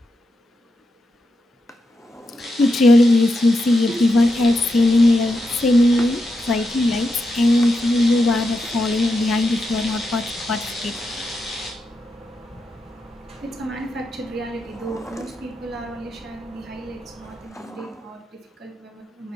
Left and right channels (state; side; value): normal; both; correlation 0.86